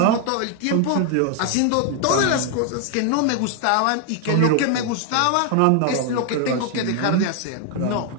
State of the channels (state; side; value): different; both; correlation 0.00